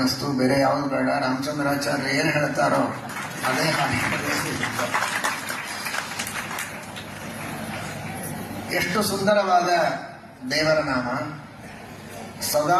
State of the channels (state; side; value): identical; both; correlation 1.00